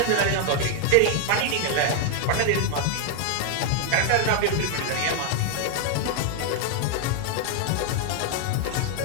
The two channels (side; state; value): both; different; correlation 0.00